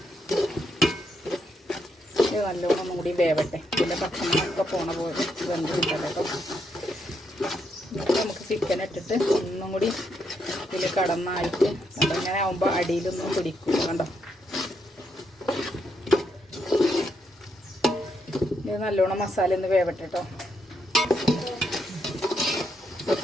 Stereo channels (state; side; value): normal; both; correlation 0.79